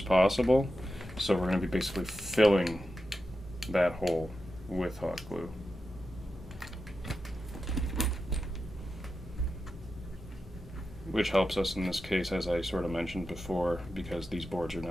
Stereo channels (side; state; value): both; normal; correlation 0.90